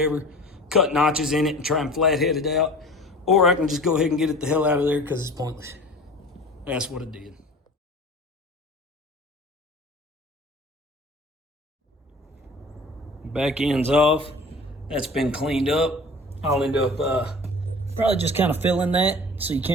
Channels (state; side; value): normal; both; correlation 0.41